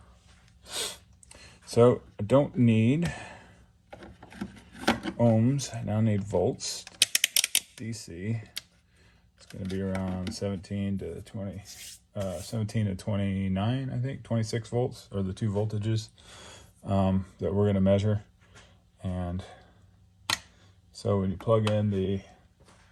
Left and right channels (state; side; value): identical; both; correlation 1.00